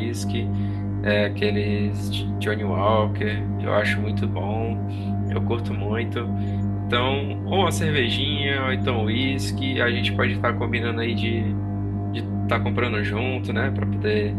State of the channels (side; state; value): both; identical; correlation 1.00